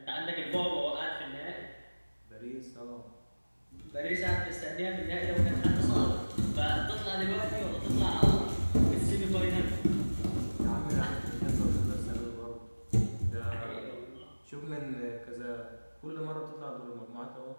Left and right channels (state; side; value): inverted; both; correlation -1.00